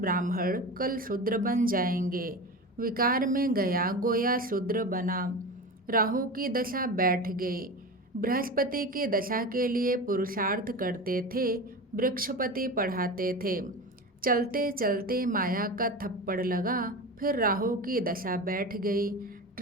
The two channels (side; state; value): both; normal; correlation 0.28